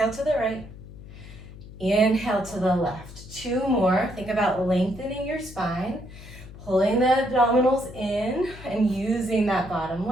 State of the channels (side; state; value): left; noise; hum, 16 dB below the sound